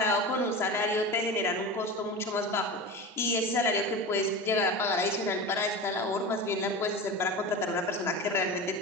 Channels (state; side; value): normal; both; correlation 0.28